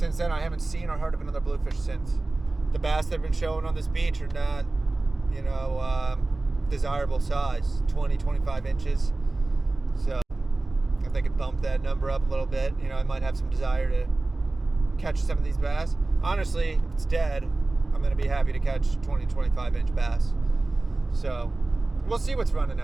then, I haven't seen or heard of another bluefish since. The bass that have been showing on this beach are not, desirable size, 20, 25 inches. So if they could bump that number up a little bit, I might have some desire to catch some of these bass. Honestly, if it's dead, I'm going to be happy to catch 20, 25 inch bass. So we'll see what's running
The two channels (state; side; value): quieter; left; 3.1 dB